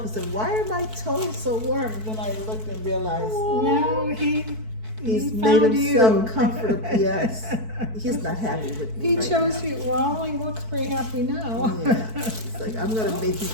and said, why are my toes so warm? And then I looked and realized No, he's he made found himself you. comfortable. Yes, he's not happy with me. He right chose now. you. Well, he looks pretty happy now. Yeah, it's like I'm gonna make you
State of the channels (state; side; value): late; left; 4.6 ms